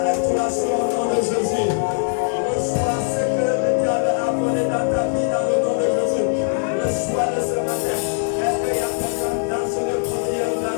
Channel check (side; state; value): right; silent; digital silence